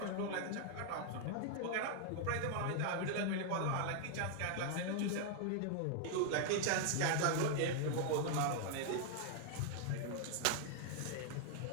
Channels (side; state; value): both; different; correlation 0.00